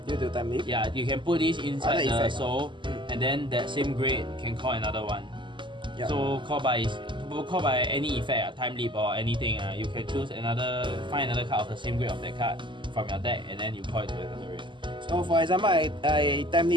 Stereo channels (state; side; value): late; left; 0.24 ms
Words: Due to time leap. Yeah, you can put this inside the effect. soul, and then that same grade can call another one. Yep. So call by any effect, time leap or anything. You can choose find another card of the same grade of that card from your deck, and then you call it to another grade. So for example, I time